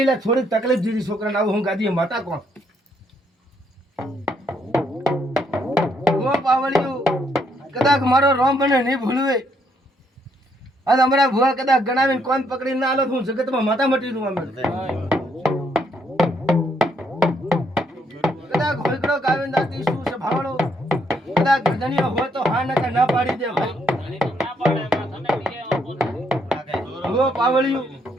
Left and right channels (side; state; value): both; normal; correlation 0.72